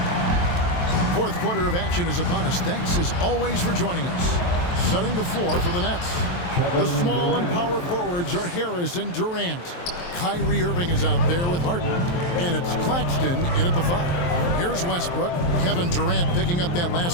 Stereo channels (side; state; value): right; late; 23 ms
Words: Fourth quarter of action is upon us. Thanks as always for joining us. Setting the floor for the Nets. The small and power forwards are Harris and Durant. Kyrie Irving is out there with Harden. And it's Claxton in at the 5. Here's Westbrook. Kevin Durant picking up that